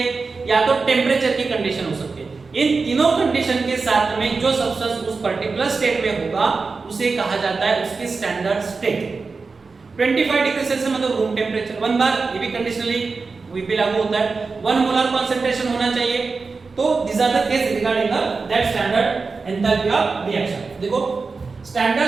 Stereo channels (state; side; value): quieter; left; 4.3 dB